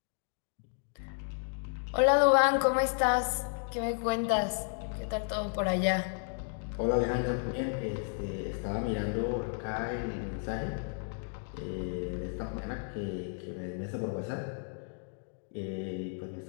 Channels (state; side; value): silent; right; digital silence